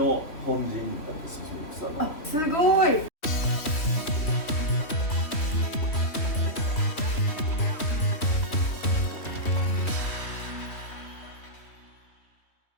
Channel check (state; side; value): late; right; 3.1 ms